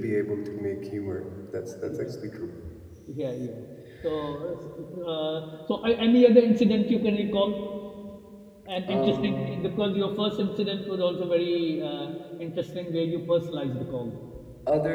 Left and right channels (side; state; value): both; identical; correlation 1.00